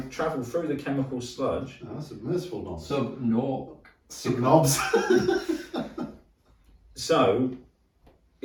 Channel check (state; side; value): identical; both; correlation 1.00